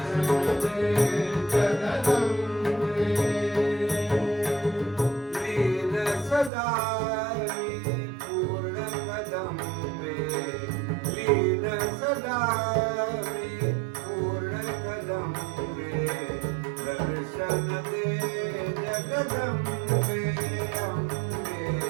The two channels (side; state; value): left; drops out; at 6.5 s